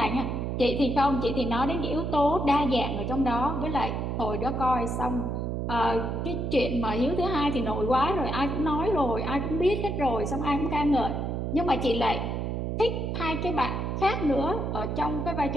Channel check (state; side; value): noise; right; hum, 2 dB below the sound